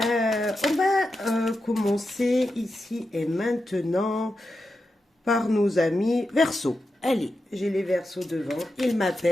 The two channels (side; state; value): both; normal; correlation 0.89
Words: va commencer ici et maintenant par nos amis Verseau. Allez, j'ai les Verseaux devant, ils